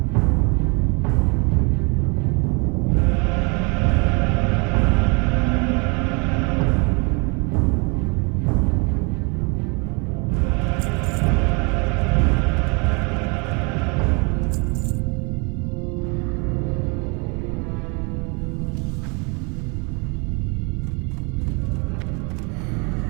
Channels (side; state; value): left; quieter; 31.8 dB